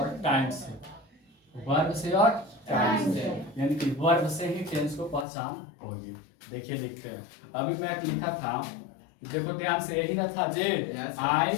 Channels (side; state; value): right; drops out; at 5.2 s